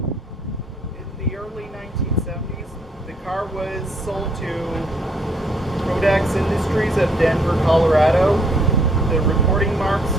In the early 1970s, Industries of Denver, Colorado. The reporting marks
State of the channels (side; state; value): both; normal; correlation 0.68